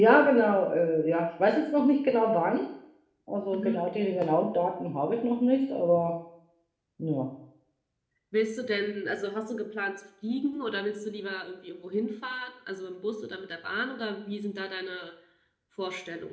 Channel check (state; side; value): identical; both; correlation 1.00